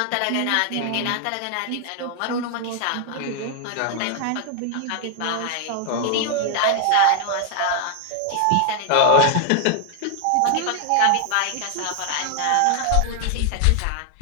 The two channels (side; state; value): both; different; correlation 0.00